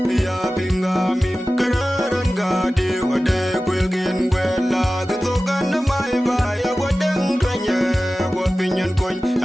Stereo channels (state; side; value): normal; both; correlation 0.96